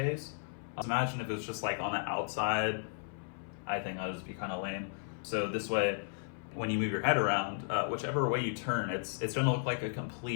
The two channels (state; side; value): silent; right; 55 dB below the other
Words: Imagine if it was just like on the outside. I think that would just be kind of lame. So this way, when you move your head around, whichever way you turn, it's going to look like a